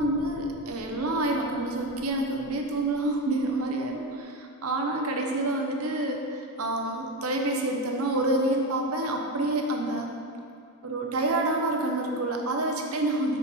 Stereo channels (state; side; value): normal; both; correlation 0.16